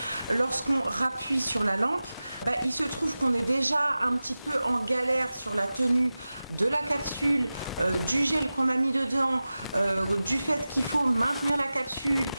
lorsqu'on rappuie sur la lampe, il se trouve qu'on est déjà un petit peu en galère sur la tenue de la capsule, du gel qu'on a mis dedans, du fait qu'il faut maintenir la capsule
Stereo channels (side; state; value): both; inverted; correlation -0.96